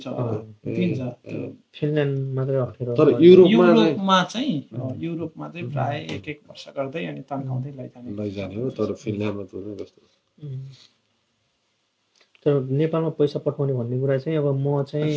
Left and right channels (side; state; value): both; identical; correlation 1.00